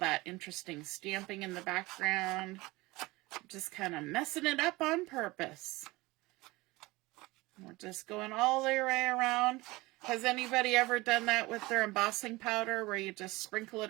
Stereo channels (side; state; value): left; quieter; 21.3 dB